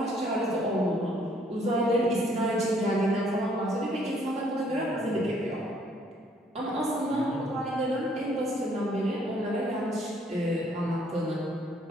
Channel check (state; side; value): normal; both; correlation 0.64